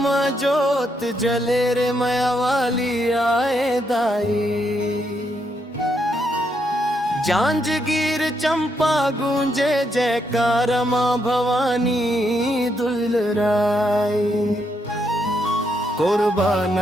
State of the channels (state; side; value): normal; both; correlation 0.78